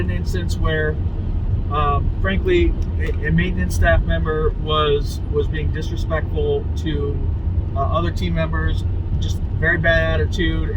instance where frankly a maintenance staff member was being disrespectful to other team members, just very bad attitude,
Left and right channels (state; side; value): identical; both; correlation 1.00